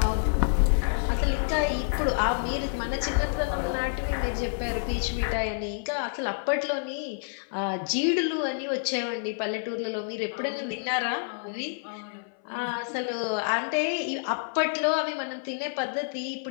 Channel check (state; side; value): silent; right; 59 dB below the other